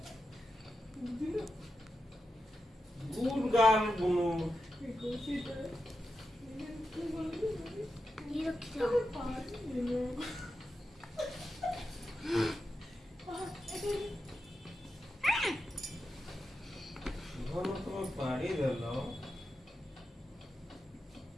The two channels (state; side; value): normal; both; correlation 0.89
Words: গুড গার্ল বুনু। ঘন তোমার পাড়ি দিল।